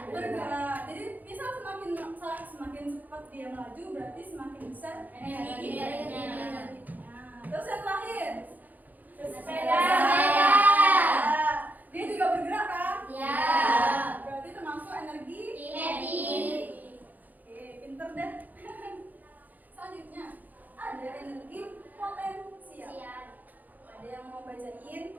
Jadi misal semakin cepat dia melaju berarti semakin besar energi kinetiknya. Nah, terus yang terakhir Sepeda. Nah, dia juga bergerak kan? Ya. Berarti termasuk energi Kinetik. Oke, pinter deh. Selanjutnya ada energi potensial. Ada yang mau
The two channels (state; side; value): late; left; 0.082 ms